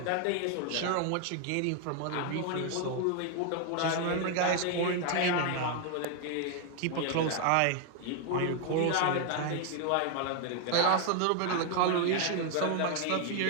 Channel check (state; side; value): different; both; correlation 0.00